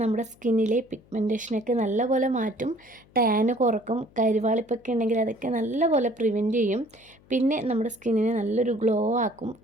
നമ്മുടെ സ്കിന്നിലെ പിഗ്മെൻറ്റേഷനൊക്കെ നല്ലപോലെ മാറ്റും, ടാന് കുറക്കും, കരിവാളിപ്പൊക്കെ ഉണ്ടെങ്കിൽ അതൊക്കെ നല്ലപോലെ പ്രിവെൻറ്റ് ചെയ്യും. പിന്നെ നമ്മുടെ സ്കിന്നിനെ നല്ലൊരു ഗ്ലോ ആക്കും,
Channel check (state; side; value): noise; left; hum, 28 dB below the sound